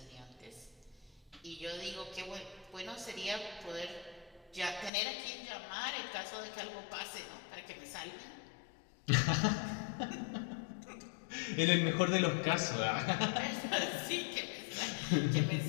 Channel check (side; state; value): right; drops out; at 4.9 s